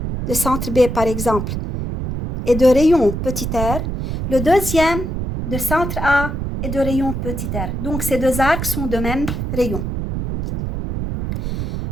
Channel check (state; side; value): noise; right; rumble, 4 dB below the sound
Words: de centre B par exemple, et de rayon petit r, le deuxième de centre A et de rayon petit r. Donc ces 2 arcs sont de même rayon.